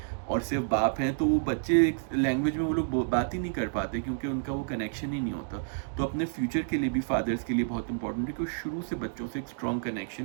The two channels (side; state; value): left; silent; digital silence